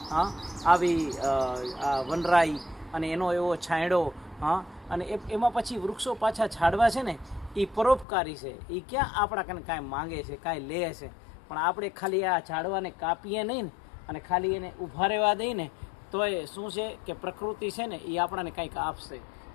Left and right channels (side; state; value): right; drops out; at 8.1 s